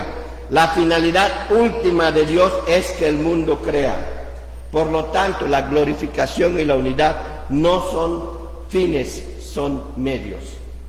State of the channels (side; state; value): both; identical; correlation 1.00